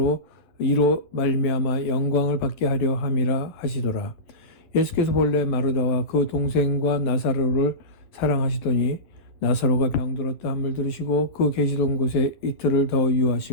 이로 말미암아 영광을 받게 하려 함이라 하시더라. 예수께서 본래 마르다와 그 동생과 나사로를 사랑하시더니 나사로가 병들었다 함을 들으시고 그 계시던 곳에 이틀을 더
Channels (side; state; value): right; late; 11 ms